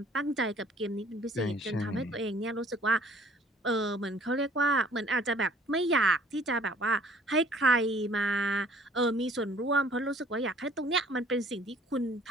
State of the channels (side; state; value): both; normal; correlation 0.56